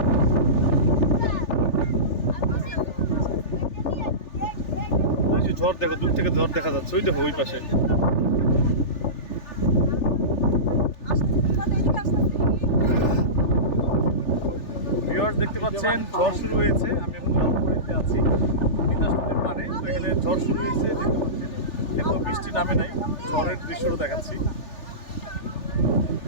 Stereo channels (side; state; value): right; late; 3.4 ms